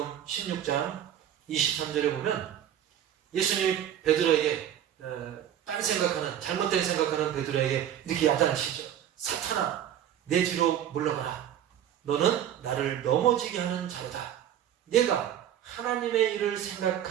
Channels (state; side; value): quieter; left; 10.5 dB